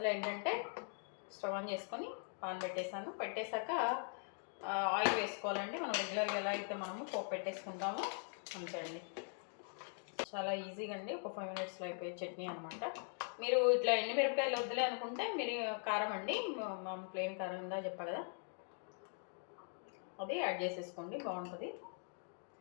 ఏంటంటే స్టవ్ ఆన్ చేసుకొని పాన్ పెట్టేశాక ఆయిల్ వేసుకోవాలండి. మనం రెగ్యులర్గా ఎలా అయితే మనము పోపు పెట్టేసుకుంటామో అంతే అండి. చాలా ఈజీగా అండి, ఒక 5 మినిట్స్లో అయిపోయే చట్నీ అనమాట. మీరు ఇట్లా ఎండుమిరపకాయలు వద్దులే అనుకుంటే మీరు కారం అండి, ప్లెయిన్ కారం ఇందా చెప్పా కదా, అది యాడ్ చేసేసుకోండి, బాగుంటుంది.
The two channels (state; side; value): silent; right; 50 dB below the other